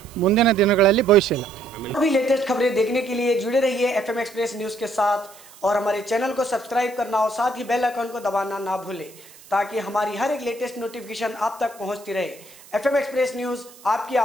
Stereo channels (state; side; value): noise; right; hiss, 22 dB below the sound